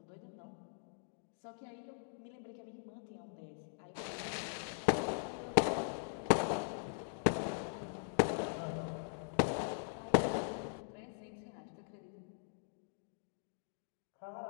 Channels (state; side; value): silent; right; digital silence